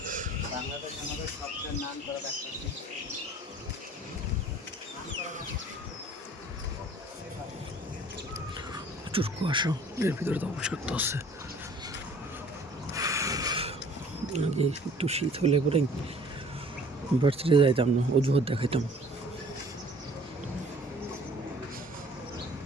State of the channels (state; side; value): normal; both; correlation 0.51